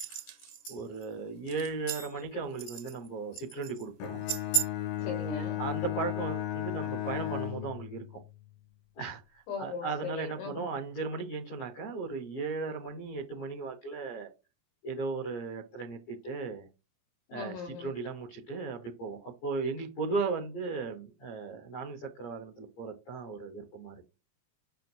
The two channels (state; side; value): late; right; 17 ms